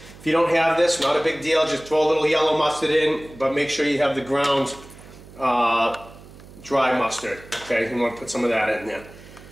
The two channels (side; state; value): right; noise; hum, 20 dB below the sound